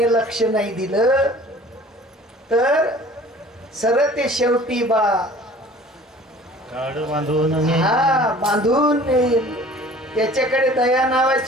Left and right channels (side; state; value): both; normal; correlation 0.48